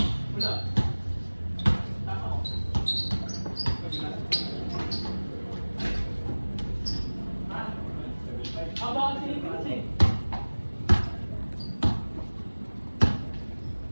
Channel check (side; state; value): both; inverted; correlation -1.00